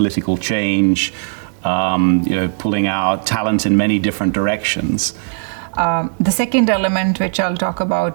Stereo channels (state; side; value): silent; left; digital silence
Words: change. Pulling out talent in many different directions. The second element which I'll talk